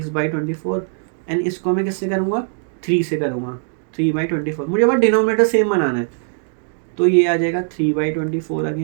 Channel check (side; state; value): left; silent; 66 dB below the other